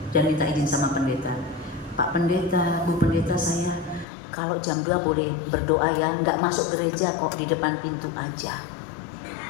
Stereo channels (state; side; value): drops out; right; at 4.0 s